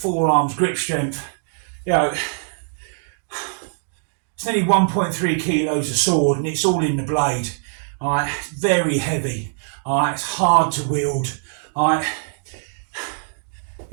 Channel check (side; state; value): left; silent; digital silence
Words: grip strength. You know, it's nearly 1.3 kilos of sword, and it's all in the blade. Alright, very heavy. Alright, it's hard to wield. Alright,